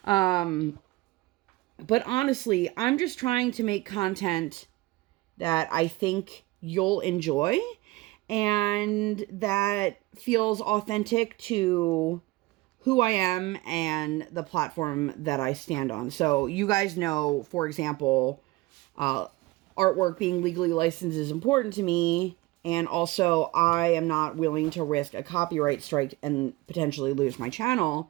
But honestly, I'm just trying to make content that I think you'll enjoy and that feels authentic to who I am and the platform that I stand on. So you guys know, for example, artwork being legally licensed is important to me. And also, I am not willing to risk a copyright strike and potentially lose my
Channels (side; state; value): left; quieter; 20.3 dB